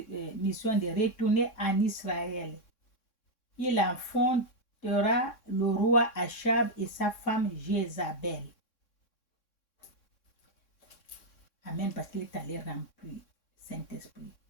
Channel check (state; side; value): late; right; 3.6 ms